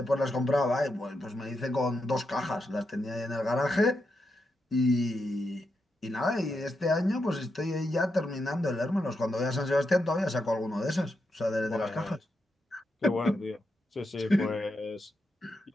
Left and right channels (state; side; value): normal; both; correlation 0.85